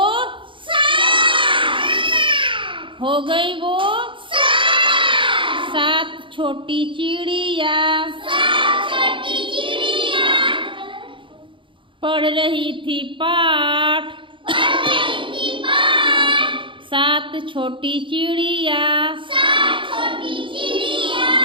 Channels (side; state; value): left; late; 0.24 ms